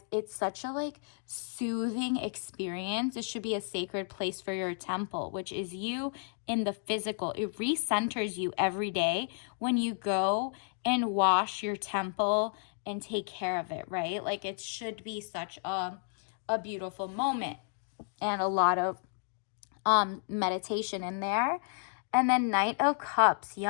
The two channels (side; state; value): right; silent; digital silence